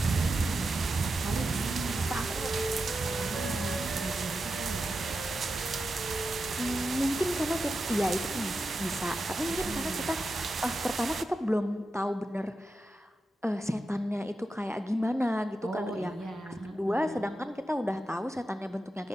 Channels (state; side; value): normal; both; correlation 0.90